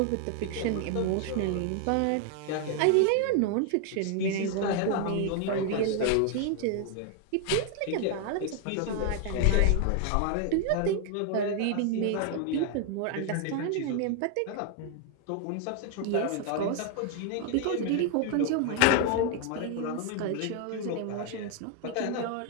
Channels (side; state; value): both; different; correlation 0.00